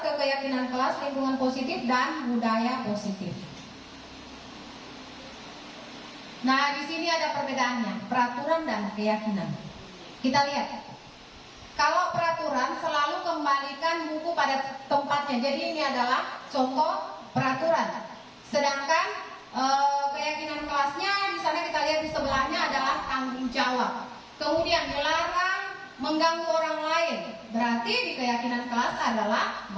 ke keyakinan kelas, lingkungan positif dan budaya positif. Nah, di sini ada perbedaannya, peraturan dan keyakinan. Kita lihat. Kalau peraturan selalu kembalikan buku pada tempatnya. Jadi ini adalah contoh peraturan. Sedangkan keyakinan kelasnya di sana kita lihat di sebelahnya adalah tanggung jawab. Kemudian dilarang mengganggu orang lain. Berarti di keyakinan kelas adalah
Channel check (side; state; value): both; identical; correlation 1.00